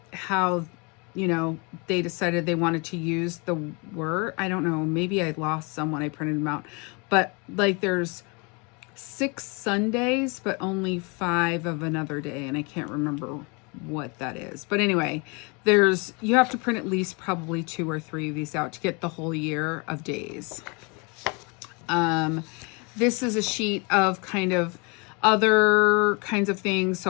you know, they decided they wanted to use the word. I don't know, maybe I lost some when I printed them out, but like there's 6 Sundays, but only 5 of another day, and I can't remember what that is. But anyway, you have to print at least probably 2 or 3 of these out to get the whole year of days. This is a sheet of kind of other kinds of things.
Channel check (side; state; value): right; quieter; 30.8 dB